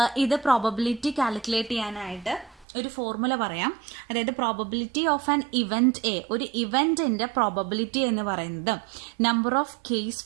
ഇത് പ്രോബബിലിറ്റി കാൽക്കുലേറ്റ് ചെയ്യാനായിട്ട് ഒരു ഫോർമുല പറയാം. അതായത് probability of an event A, ഒരു ഇവന്റിന്റെ പ്രോബബിലിറ്റി എന്ന് പറയുന്നത് number of case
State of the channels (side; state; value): left; drops out; at 2.7 s